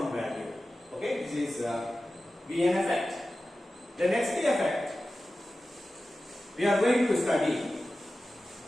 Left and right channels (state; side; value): normal; both; correlation 0.94